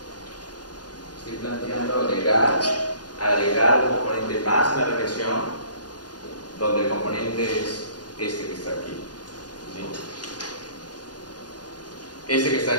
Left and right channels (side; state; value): right; late; 0.69 ms